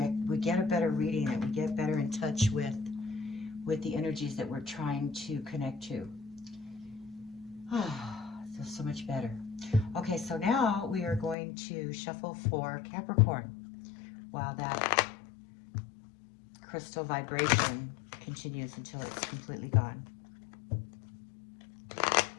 we get a better reading and we get better in touch with the energies that we're trying to connect to. Feels so much better. Okay, so now we are going to shuffle for Capricorn while that crystal vibration continues until it's completely gone.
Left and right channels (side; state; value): right; drops out; at 11.4 s